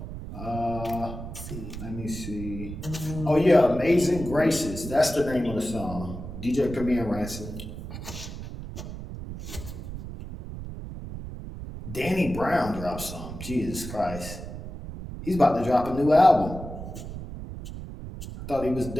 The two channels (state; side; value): noise; right; rumble, 9 dB below the sound